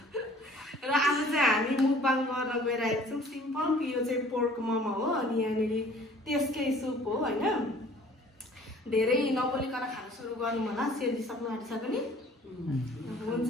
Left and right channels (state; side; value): normal; both; correlation 0.52